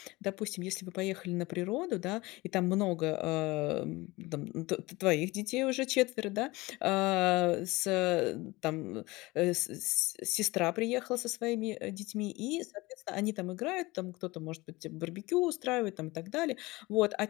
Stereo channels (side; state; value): right; quieter; 21.6 dB